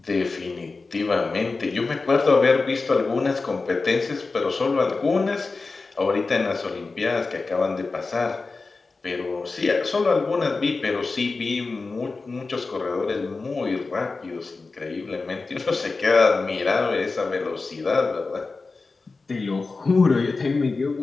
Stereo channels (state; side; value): quieter; right; 3.9 dB